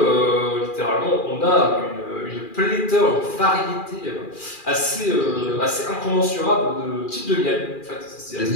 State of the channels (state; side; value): late; right; 2.4 ms